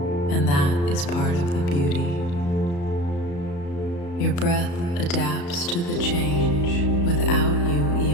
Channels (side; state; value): right; late; 35 ms